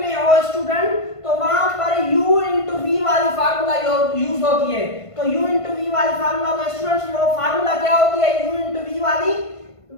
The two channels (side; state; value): right; late; 1.5 ms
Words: हो स्टूडेंट तो वहां पर u इंटू v वाली फार्मूला यूज होती है। तो u इंटू v वाली फार्मूला, तो स्टूडेंट्स वो फार्मूला क्या होती है, u इंटू v वाली,